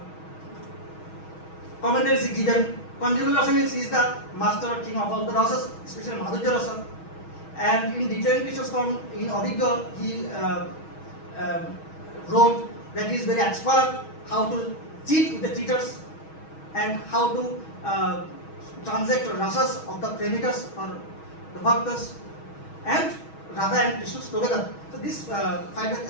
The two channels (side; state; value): right; late; 6.3 ms